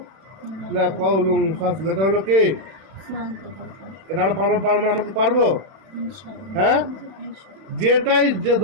লাকাউলুন ফাসল, এটা হলো কি? এটা আমরা পারবো আমাকে পারবো? হ্যাঁ, যেটাই যে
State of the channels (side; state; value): left; late; 31 ms